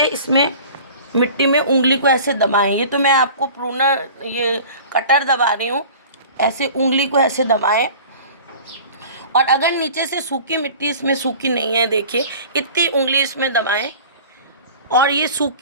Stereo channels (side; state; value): both; inverted; correlation -0.42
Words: इसमें मिट्टी में उंगली को ऐसे दबाएं। ये तो मैं आपको प्रूनर, ये कटर दबा रही हूँ, ऐसे उंगली को ऐसे दबाएं। और अगर नीचे से सूखी मिट्टी इसमें सूखी नहीं है, देखिए इतनी उंगली इसमें दबाएं। और ये